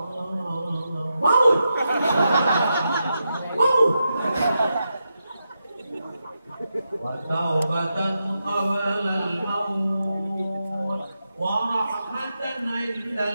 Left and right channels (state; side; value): inverted; both; correlation -0.86